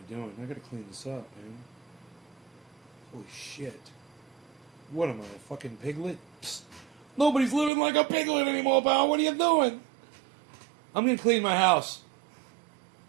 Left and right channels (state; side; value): drops out; left; at 7.7 s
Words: doing? I gotta clean this up, man. Holy shit. What am I, a fucking piglet? Psst. Nobody's living like a piglet anymore, pal. What are you doing? I'm gonna clean my house.